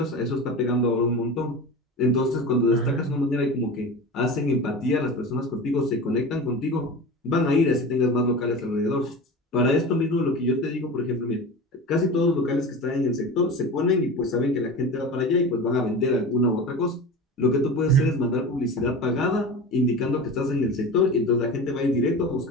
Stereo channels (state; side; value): normal; both; correlation 0.31